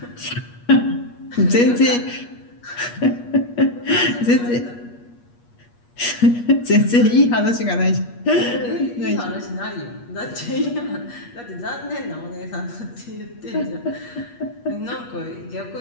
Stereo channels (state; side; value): late; right; 8.4 ms